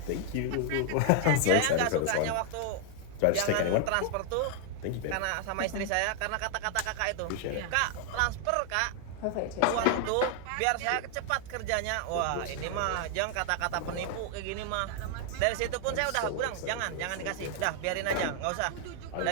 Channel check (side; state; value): both; different; correlation 0.00